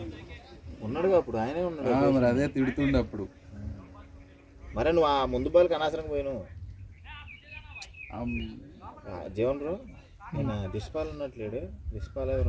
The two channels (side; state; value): both; identical; correlation 1.00